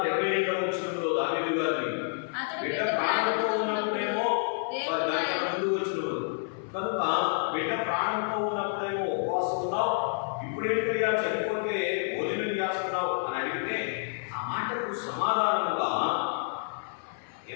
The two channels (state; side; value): silent; right; 59 dB below the other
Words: 22వ వచనంలో దావీదు గారిని, బిడ్డ ప్రాణంతో ఉన్నప్పుడేమో ముందు వచ్చినప్పుడు కనుక బిడ్డ ప్రాణంతో ఉన్నప్పుడేమో ఉపవాసం ఉన్నావు, ఇప్పుడేంటయ్యా చనిపోతే భోజనం చేస్తున్నావు అని అడిగితే ఆ మాటకు సమాధానంగా